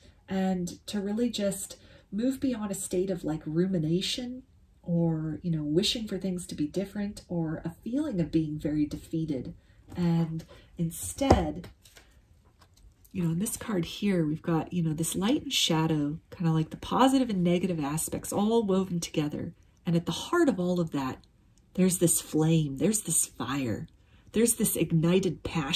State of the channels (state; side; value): identical; both; correlation 1.00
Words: And to really just move beyond a state of like rumination or, you know, wishing for things to be different or a feeling of being very defeated. And instead, you know, in this card here, we've got, you know, this light and shadow, kind of like the positive and negative aspects all woven together. And at the heart of all of that, there's this flame, there's this fire, there's this ignited